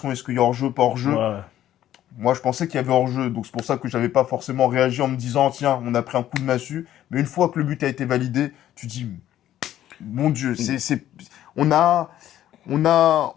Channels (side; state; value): right; quieter; 12.3 dB